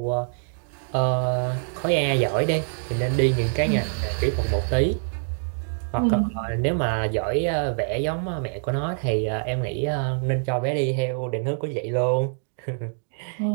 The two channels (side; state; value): left; silent; digital silence